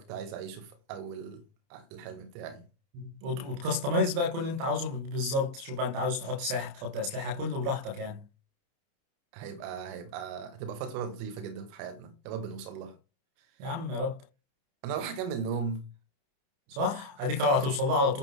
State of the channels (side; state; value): left; late; 29 ms